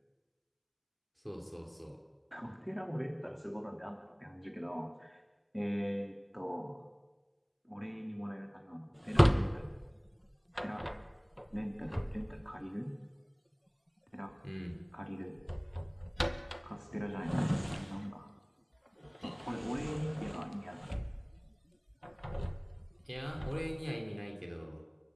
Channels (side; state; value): both; identical; correlation 1.00